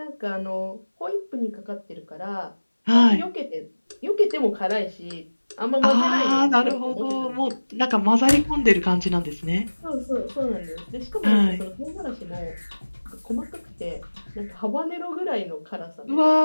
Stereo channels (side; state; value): both; inverted; correlation -1.00